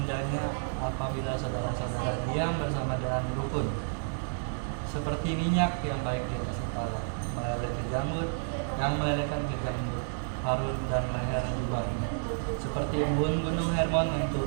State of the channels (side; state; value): left; silent; digital silence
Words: apabila saudara-saudara diam bersama dengan rukun. seperti minyak yang baik di atas kepala, meleleh ke janggut, yang melelehkan ke janggut, Harun dan leher jubahnya. Seperti embun gunung Hermon yang